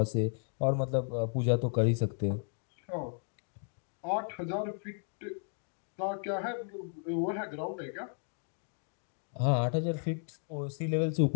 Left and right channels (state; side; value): silent; right; 55 dB below the other